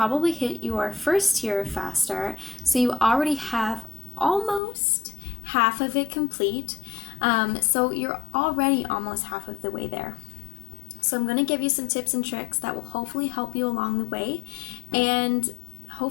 hit your first tier of faster, so you already have almost half of it complete. So you're already almost half of the way there. So I'm going to give you some tips and tricks that will hopefully help you along the way, and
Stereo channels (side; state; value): right; drops out; at 4.6 s